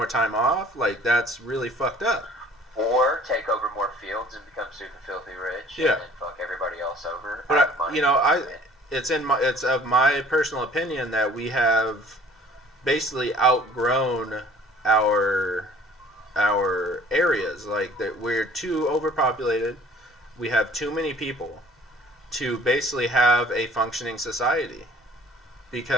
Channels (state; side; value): normal; both; correlation 0.52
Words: time off, like, that's really fucked up. Or take over more fields and become super filthy rich. Yeah. And then fuck everybody else over. But it's of my personal opinion that we have basically outgrown our areas. Like, that we're too overpopulated. We have too many people to basically have a functioning society,